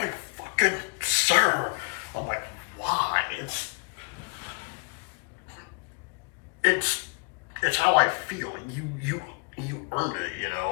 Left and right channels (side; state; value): right; quieter; 37.7 dB